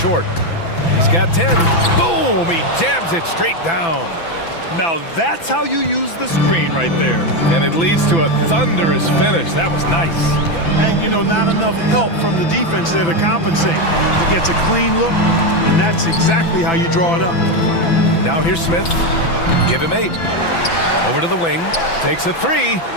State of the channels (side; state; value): right; late; 6.0 ms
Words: He's got 10. Boom! He jams it straight down. Now that's how you use the screen right there. And it leads to a thunderous finish. That was nice. And, you know, not enough help from the defense there to compensate. He gets a clean look, and that's exactly how you draw it up. Now here's Smith. Give him 8. Over to the wing. Takes a 3.